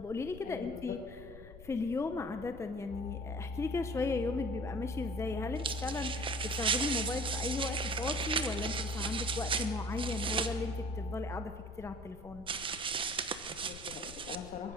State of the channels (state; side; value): noise; left; rumble, 16 dB below the sound